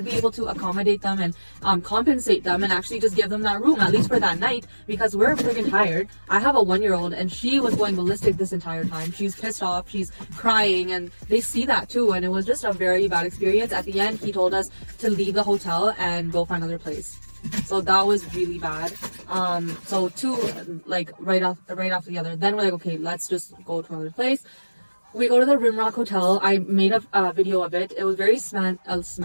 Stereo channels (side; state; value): both; inverted; correlation -1.00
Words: be able to accommodate them and compensate them and actually just give them that room, at least for that night, because we're freaking tired. I have a 1-year-old, and she was going ballistic this entire time. She's pissed off, she's crying, and they see that too. And it was just a very bad experience. At the end, he told us to leave the hotel and go find another place. So that was really bad. So two, like right after the other. Then we're like, okay, let's just go to another place. We go to the Rimrock Hotel. I made a video of it. It was very fancy.